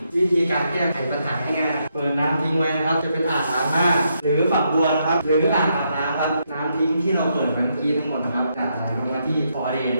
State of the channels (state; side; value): inverted; both; correlation -0.78